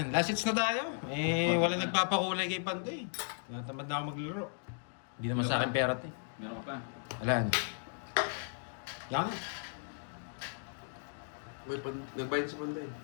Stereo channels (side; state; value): right; silent; digital silence